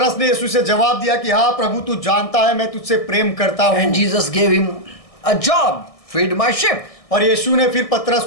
ने यीशु से जवाब दिया कि हाँ प्रभु, तू जानता है मैं तुझसे प्रेम करता हूँ। And Jesus gave him a job, feed my sheep. और यीशु ने फिर पतरस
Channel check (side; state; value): right; late; 1.6 ms